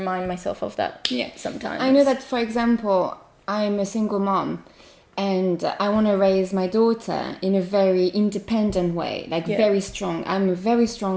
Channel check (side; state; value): both; identical; correlation 1.00